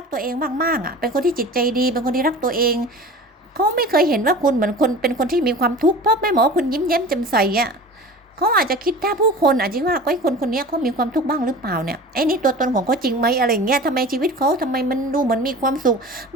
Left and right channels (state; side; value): normal; both; correlation 0.37